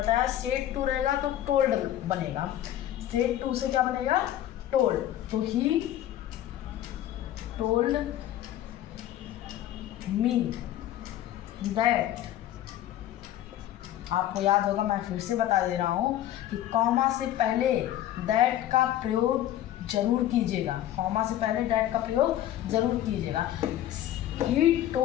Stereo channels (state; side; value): quieter; right; 12.6 dB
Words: सेड टू रहेगा तो टोल्ड बनेगा। सेड टू से क्या बनेगा? टोल्ड। तो ही told me that, आपको याद होगा, मैं फिर से बता दे रहा हूँ कि कॉमा से पहले दैट का प्रयोग जरूर कीजिएगा, कॉमा से पहले दैट का प्रयोग जरूर कीजिएगा। He